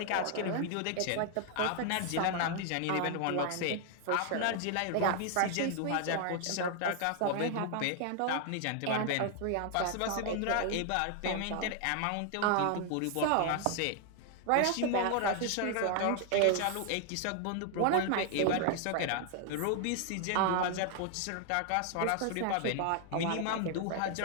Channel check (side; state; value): both; different; correlation 0.00